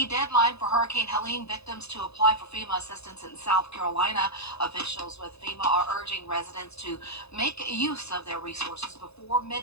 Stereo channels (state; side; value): late; right; 0.79 ms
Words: deadline for Hurricane Helene victims to apply for FEMA assistance in South Carolina. Officials with FEMA are urging residents to make use of their resources before